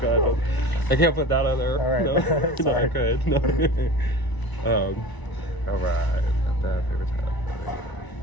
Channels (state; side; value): late; right; 1.0 ms